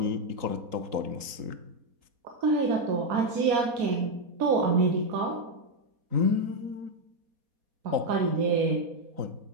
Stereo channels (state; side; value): late; left; 3.8 ms